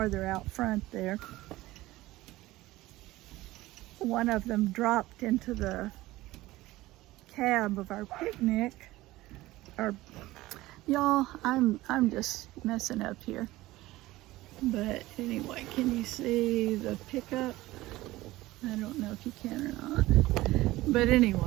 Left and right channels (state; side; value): quieter; left; 17.8 dB